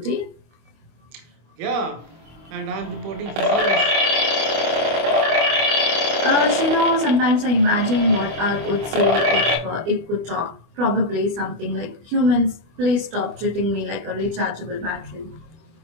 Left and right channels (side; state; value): left; late; 25 ms